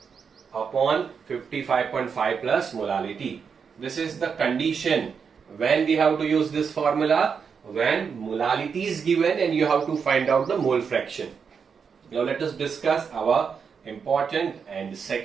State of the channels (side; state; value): left; quieter; 6.2 dB